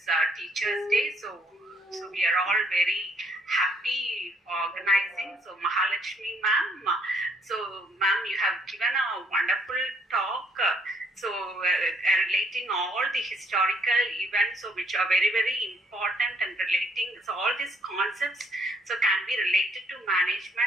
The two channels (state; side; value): normal; both; correlation 0.67